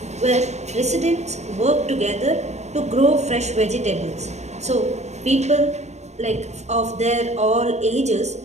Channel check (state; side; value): late; left; 0.32 ms